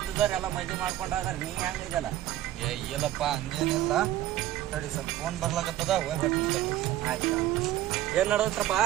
ಎಲ್ಲ ಮದ್ವಿ ಮಾಡ್ಕೊಂಡಾರ. ನೀ ಹೆಂಗಿದಲ್ಲ? ಇಲ್ಲಪ್ಪ ಹಂಗೇನಿಲ್ಲ. ತಡಿ ಸ್ವಲ್ಪ ಫೋನ್ ಬರ್ಲಾಕತ್ತದ ಹೋಗ್ಬಿಟ್ಟು ತಡಿ. ಆಯ್ತಾ ಏನ್ ನಡೆದತ್ರಪ್ಪ?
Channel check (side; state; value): left; quieter; 13.7 dB